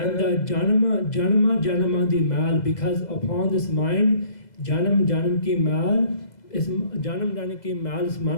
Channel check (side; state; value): right; late; 2.0 ms